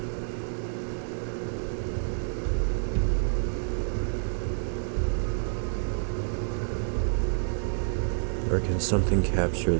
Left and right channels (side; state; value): left; silent; digital silence